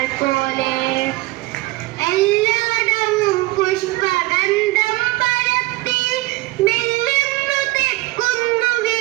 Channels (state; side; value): quieter; left; 20.5 dB